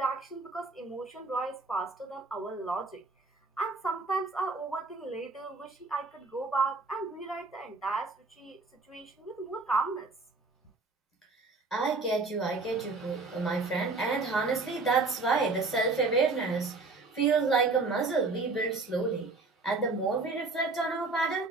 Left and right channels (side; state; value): left; quieter; 3.7 dB